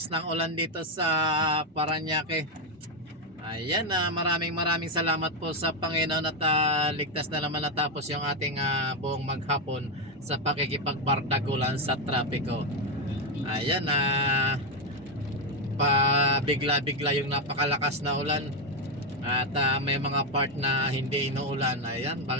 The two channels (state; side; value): normal; both; correlation 0.05